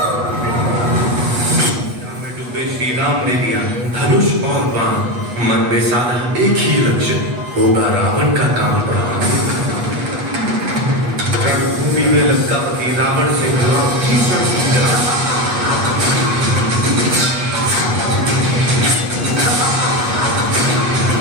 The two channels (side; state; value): left; late; 8.2 ms